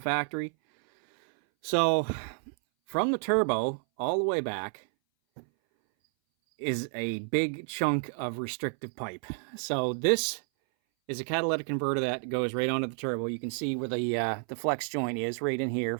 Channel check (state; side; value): silent; left; 58 dB below the other